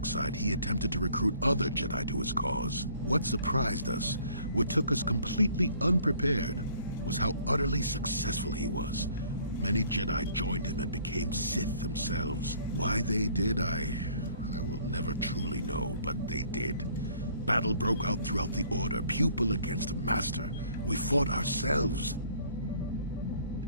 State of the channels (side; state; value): both; inverted; correlation -0.58